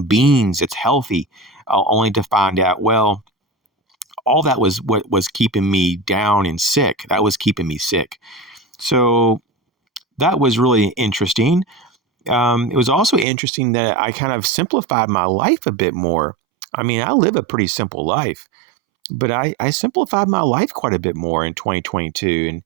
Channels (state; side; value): drops out; left; at 13.2 s